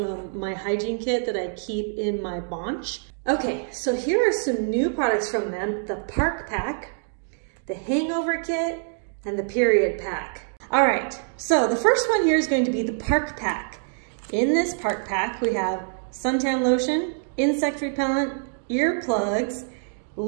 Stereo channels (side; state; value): left; silent; digital silence